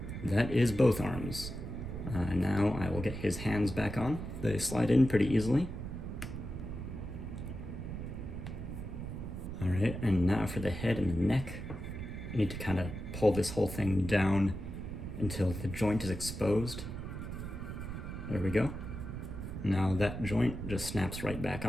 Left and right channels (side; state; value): right; noise; rumble, 7 dB below the sound